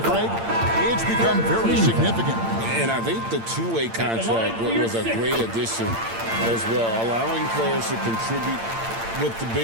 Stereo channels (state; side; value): late; left; 8.8 ms